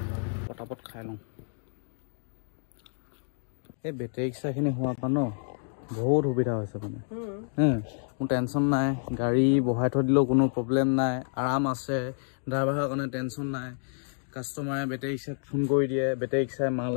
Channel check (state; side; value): silent; right; 59 dB below the other